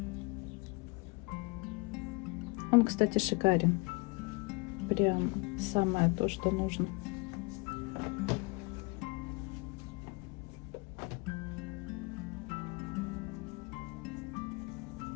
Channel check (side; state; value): right; quieter; 28.0 dB